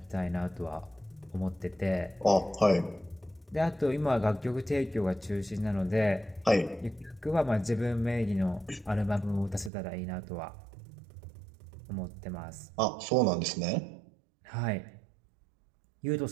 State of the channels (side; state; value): left; drops out; at 9.7 s